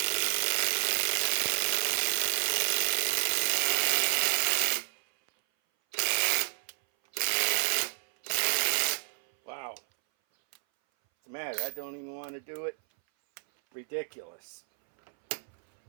Wow. What's the matter? I don't even want to do it. Ridiculous.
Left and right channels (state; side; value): silent; left; 58 dB below the other